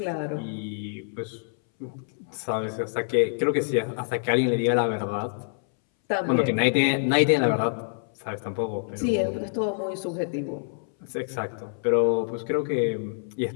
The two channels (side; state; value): right; silent; 61 dB below the other